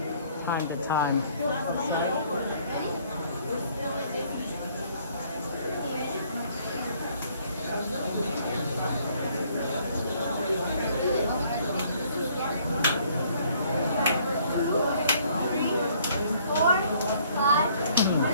time to time.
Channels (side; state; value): both; inverted; correlation -0.62